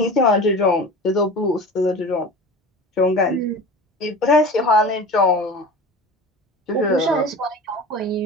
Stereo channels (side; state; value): both; normal; correlation 0.35